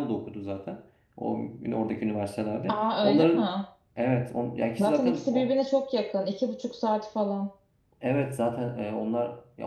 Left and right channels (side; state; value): both; identical; correlation 1.00